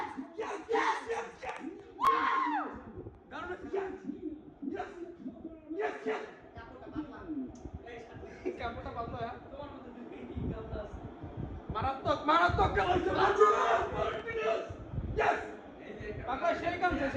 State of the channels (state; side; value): identical; both; correlation 1.00